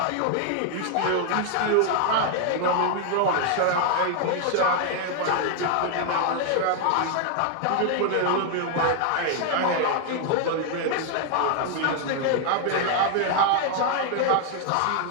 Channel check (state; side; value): different; both; correlation 0.00